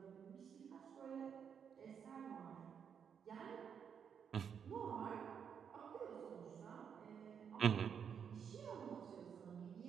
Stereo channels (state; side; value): quieter; left; 7.4 dB